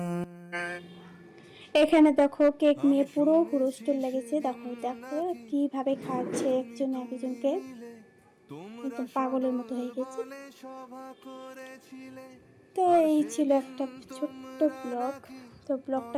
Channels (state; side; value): identical; both; correlation 1.00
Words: এখানে দেখো কেক নিয়ে আমি পুরো শুনেছি হুড়োস্থুল লেগেছে। দেখো সেদিন দেখো নাকি কিভাবে খাচ্ছে একজন একজনকে, তোমরা একদম পাগলের মতো হয়ে গেছে। সদলে সভা করেছিলে তো আর এই ছিল সেদিন একটা ছোট্ট তোমরা ব্লগ। নাকি তো